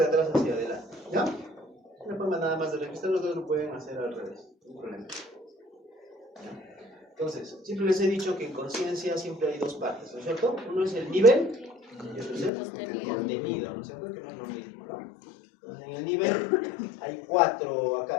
atrás hacia adelante, ¿ya? Una forma nada más de registrar, los dos lo pueden hacer al revés, no hay problema. Entonces, siempre les he dicho que en conciencia siempre hay dos partes, ¿no es cierto? Uno es el nivel y otro es el contenido, ¿no es cierto? Que no es lo mismo, ¿no? Entonces, en el nivel hay 4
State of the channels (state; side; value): drops out; right; at 12.5 s